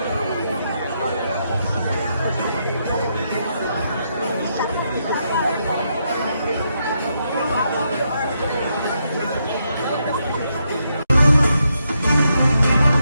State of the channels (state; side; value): inverted; both; correlation -0.80